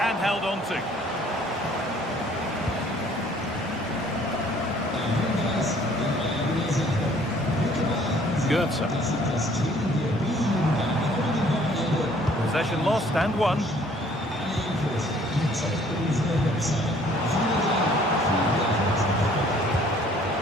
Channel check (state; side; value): normal; both; correlation 0.58